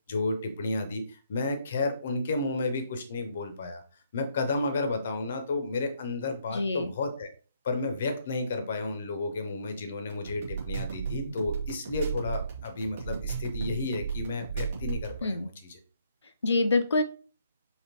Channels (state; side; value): inverted; both; correlation -0.71